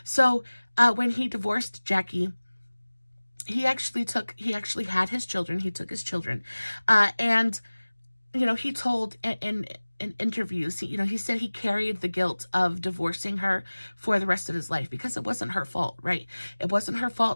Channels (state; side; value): inverted; both; correlation -1.00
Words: So when he divorced Jackie, he actually had his children. He took his children, and you know, he told in in interviews, you know, he said he carried the guilt of divorcing her for the rest of his life because it wasn't her fault, right? It wasn't her